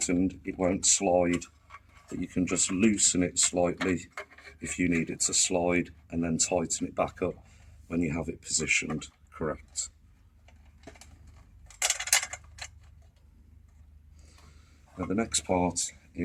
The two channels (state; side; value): identical; both; correlation 1.00